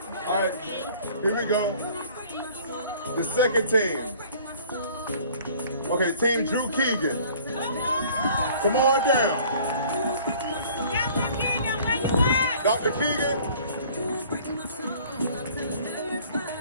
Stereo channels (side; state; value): both; inverted; correlation -0.52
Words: All right, here we go. The second team. Okay, Team Drew Keegan. Come on down. Dr. Keegan.